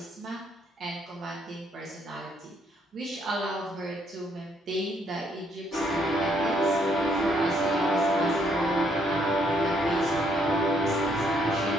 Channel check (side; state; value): both; normal; correlation 0.70